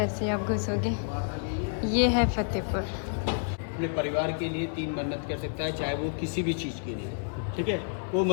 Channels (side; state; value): right; silent; 58 dB below the other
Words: आप घुसोगे, ये है फतेहपुर। अपने परिवार के लिए 3 मन्नत कर सकता है, चाहे वो किसी भी चीज़ के लिए। ठीक है, वो